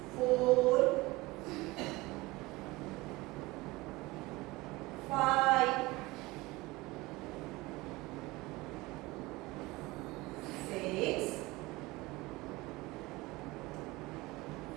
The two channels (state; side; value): quieter; left; 21.4 dB